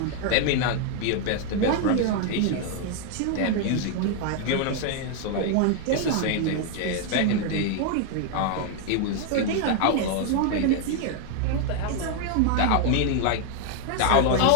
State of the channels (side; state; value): both; different; correlation 0.00